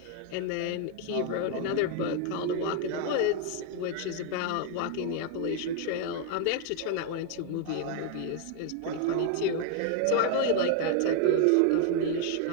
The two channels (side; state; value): both; different; correlation 0.00